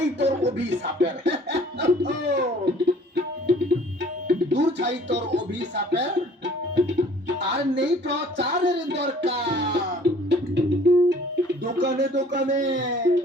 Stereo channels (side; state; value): both; normal; correlation 0.53